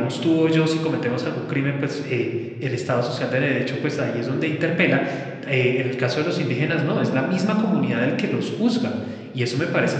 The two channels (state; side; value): identical; both; correlation 1.00